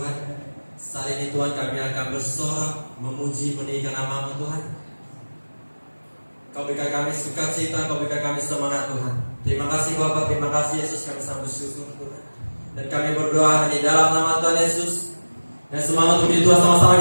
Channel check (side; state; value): both; inverted; correlation -1.00